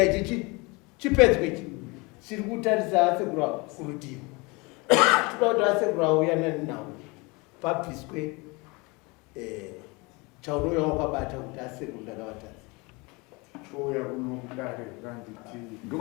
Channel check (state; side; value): quieter; right; 26.6 dB